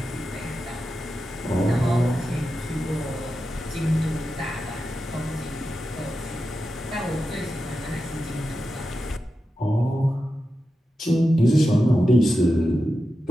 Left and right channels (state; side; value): normal; both; correlation 0.90